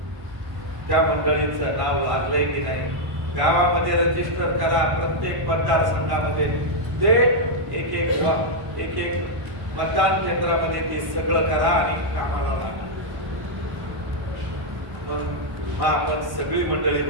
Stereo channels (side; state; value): left; late; 1.1 ms